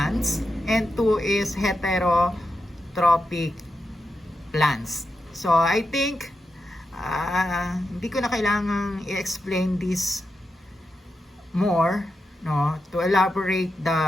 and two is heterotrophic plants. So, I think hindi ko na kailangang i-explain this more, no, to elaborate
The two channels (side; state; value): both; normal; correlation 0.87